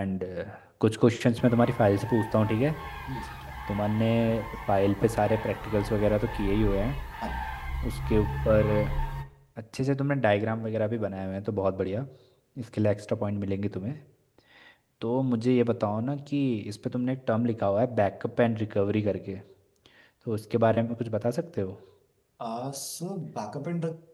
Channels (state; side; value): identical; both; correlation 1.00